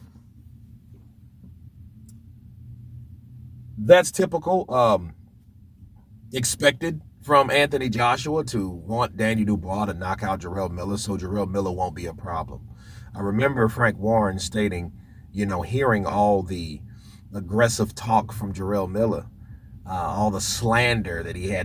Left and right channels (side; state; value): both; identical; correlation 1.00